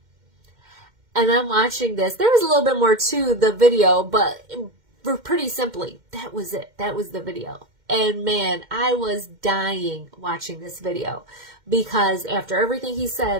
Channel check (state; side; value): late; left; 2.1 ms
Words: And I'm watching this. There was a little bit more to the video, but pretty simply, that was it. That was the video. And man, I was dying watching this video, because after everything he